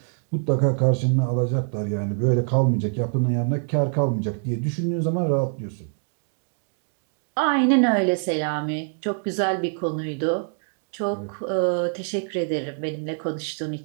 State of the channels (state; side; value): silent; left; 60 dB below the other